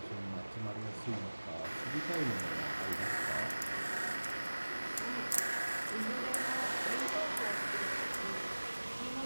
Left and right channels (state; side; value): inverted; both; correlation -1.00